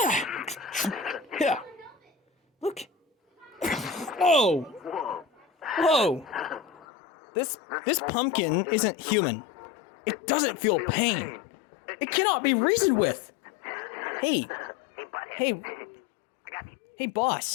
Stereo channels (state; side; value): drops out; right; at 6.9 s